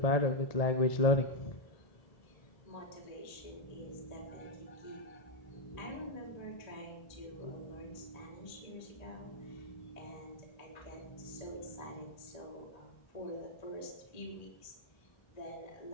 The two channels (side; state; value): right; late; 1.8 ms